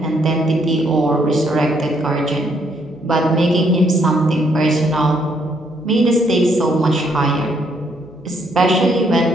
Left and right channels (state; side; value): noise; right; hum, 28 dB below the sound